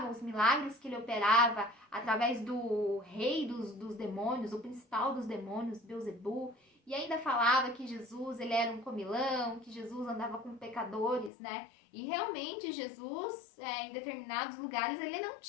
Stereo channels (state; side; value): drops out; right; at 11.3 s